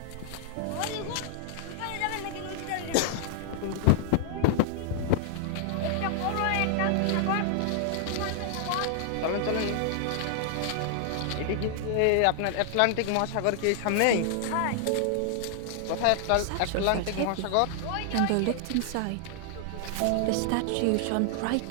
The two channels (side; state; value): both; different; correlation -0.01